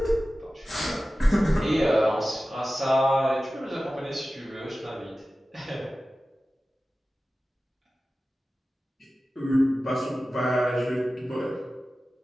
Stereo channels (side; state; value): both; normal; correlation 0.95